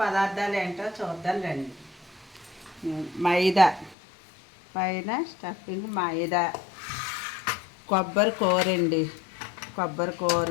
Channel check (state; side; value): drops out; right; at 4.0 s